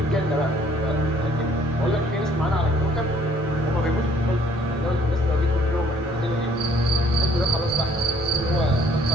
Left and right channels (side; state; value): both; normal; correlation 0.60